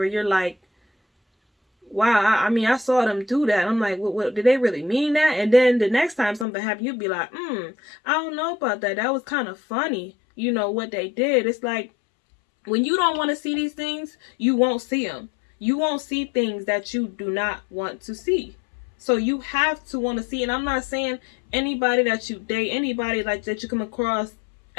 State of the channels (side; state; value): right; drops out; at 6.5 s